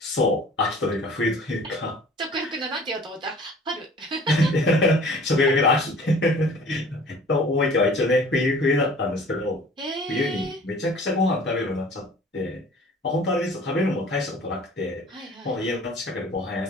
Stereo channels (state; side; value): normal; both; correlation 0.48